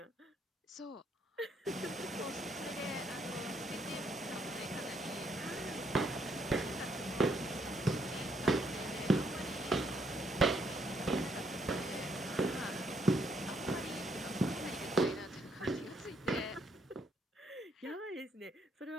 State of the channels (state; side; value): normal; both; correlation 0.71